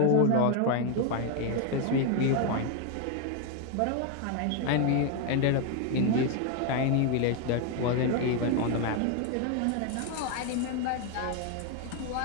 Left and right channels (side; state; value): both; different; correlation 0.01